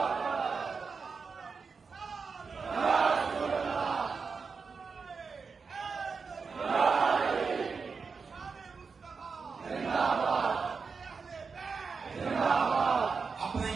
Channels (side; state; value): left; quieter; 5.1 dB